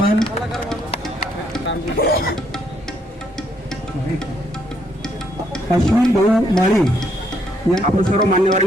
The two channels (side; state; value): both; normal; correlation 0.72